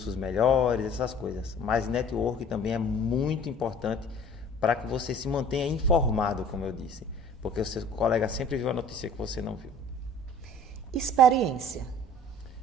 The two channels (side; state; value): both; normal; correlation 0.49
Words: melhores, essas coisas. Mas network também é muito importante para que você se mantenha informado, como eu disse. Porque o seu colega sempre viu a notícia que você não viu. Experiência.